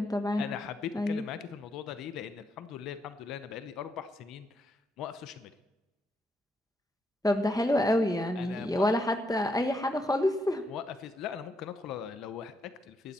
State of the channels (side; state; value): both; normal; correlation 0.79